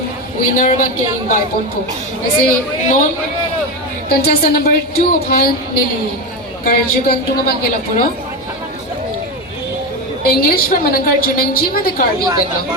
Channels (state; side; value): noise; left; hum, 26 dB below the sound